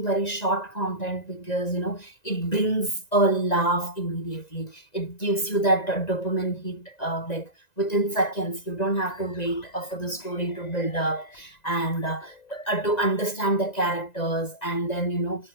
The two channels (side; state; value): right; late; 1.9 ms